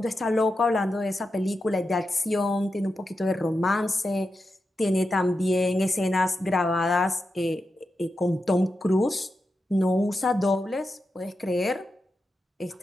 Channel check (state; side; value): normal; both; correlation 0.89